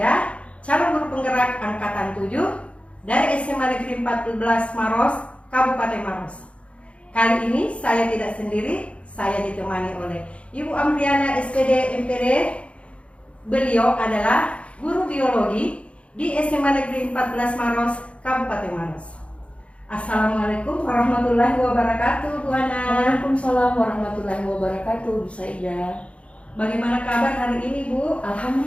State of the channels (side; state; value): right; late; 0.061 ms